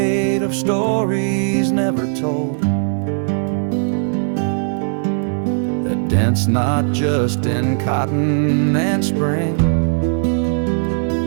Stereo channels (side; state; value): left; silent; digital silence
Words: of stories never told, that dents not just in cotton and spring.